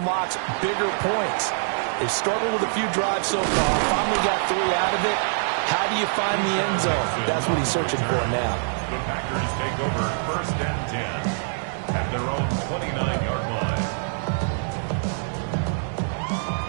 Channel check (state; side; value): silent; left; digital silence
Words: bigger points. They've struggled with a few drives so far, finally got 3 out of it. How do you find the end zone? That's what he's searching for now. The Packers take over 1st and 10 at their own 29-yard line.